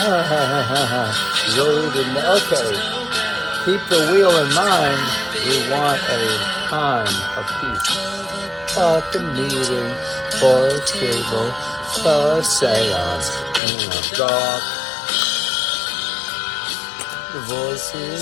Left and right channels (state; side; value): drops out; right; at 13.6 s